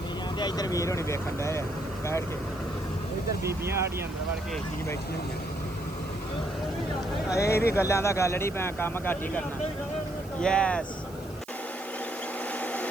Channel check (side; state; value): right; noise; hiss, 22 dB below the sound